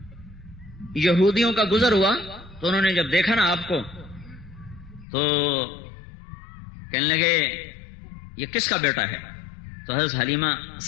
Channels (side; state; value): right; drops out; at 5.1 s